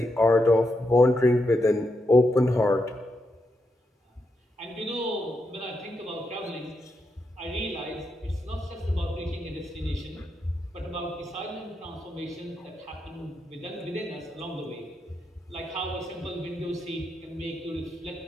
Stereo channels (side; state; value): both; normal; correlation 0.83